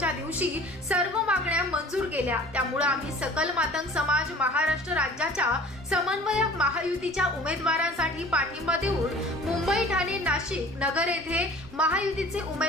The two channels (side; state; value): both; normal; correlation 0.46